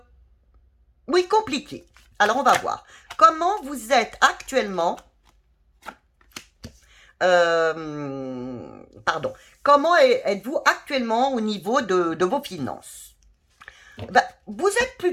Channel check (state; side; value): identical; both; correlation 1.00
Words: Oui, compliquée. Alors, on va voir. Comment vous êtes actuellement... pardon. Comment êtes-vous actuellement au niveau de vos finances? Ben, vous êtes